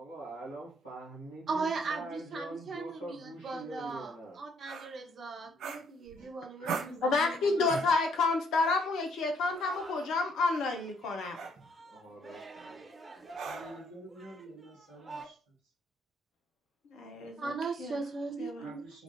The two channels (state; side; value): normal; both; correlation 0.68